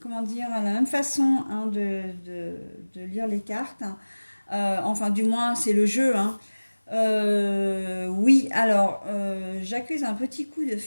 comment dire, à la même façon hein, de lire les cartes. Enfin, du moins, c'est le jeu, hein. Oui, alors, j'accuse un petit coup de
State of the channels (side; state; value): both; inverted; correlation -1.00